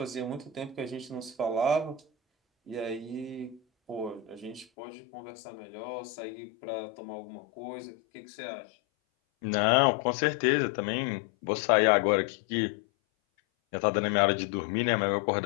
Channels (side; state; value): right; drops out; at 4.7 s